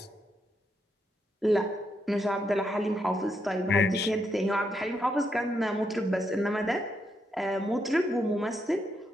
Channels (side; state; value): both; normal; correlation 0.79